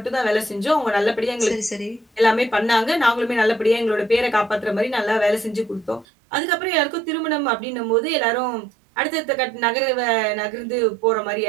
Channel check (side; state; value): left; drops out; at 6.1 s